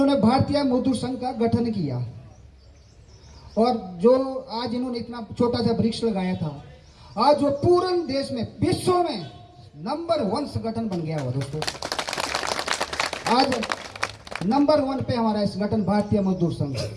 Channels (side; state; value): both; identical; correlation 1.00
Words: भारतीय मजदूर संघ का गठन किया। और जो आज इन्होंने इतना छोटा सा वृक्ष लगाया था, आज वो पूरे देश में, विश्व में नंबर 1 संगठन बन गया हुआ दोस्तों। आज नंबर 1 पे हमारा इस संगठन भारतीय मजदूर संघ।